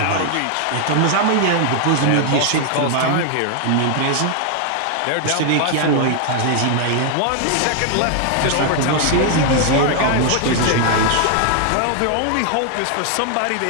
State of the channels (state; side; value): different; both; correlation 0.00